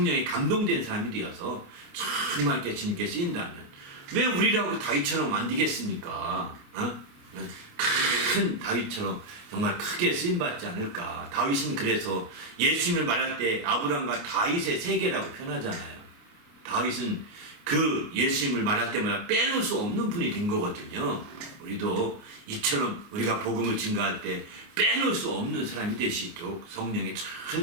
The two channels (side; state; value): left; late; 28 ms